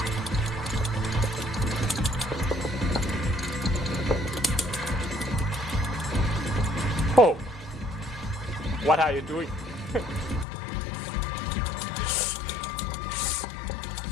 Oh. What are you doing?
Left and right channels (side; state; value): right; drops out; at 10.5 s